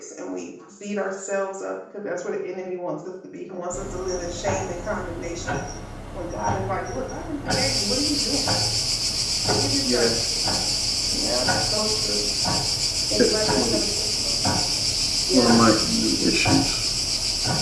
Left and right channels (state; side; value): identical; both; correlation 1.00